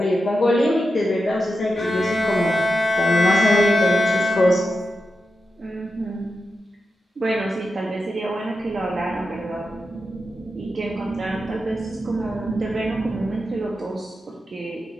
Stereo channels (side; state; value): both; normal; correlation 0.89